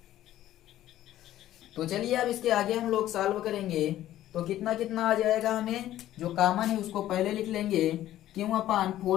तो चलिए अब इसके आगे हम लोग सॉल्व करेंगे। तो कितना कितना आ जाएगा? हमें जो कॉमन है उसको पहले लिख लेंगे, Q upon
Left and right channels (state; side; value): quieter; right; 13.3 dB